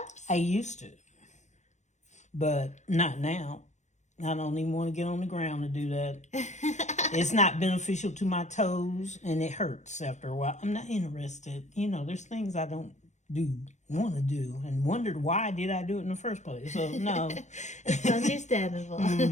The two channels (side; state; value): right; late; 0.34 ms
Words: I used to, but not now. I don't even want to get on the ground to do that. It's not beneficial to my toes, and it hurts after a while. I'm not interested. You know, there's things I don't want to do, and wondered why did I do it in the first place. So, no. It's understandable.